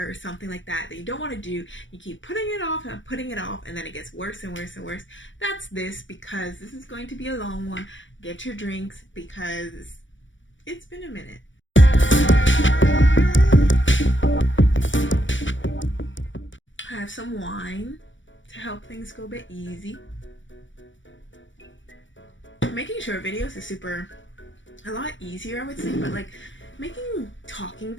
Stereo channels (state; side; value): late; right; 0.56 ms